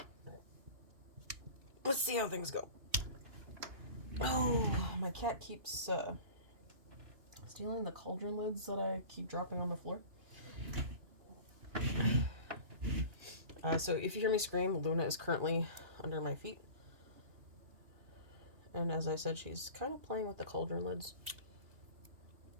Let's see how things go. Oh, my cat keeps stealing the cauldron lids that I keep dropping on the floor. So if you hear me scream, Luna is currently under my feet. And as I said, she's kind of playing with the cauldron lids.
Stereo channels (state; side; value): late; left; 2.9 ms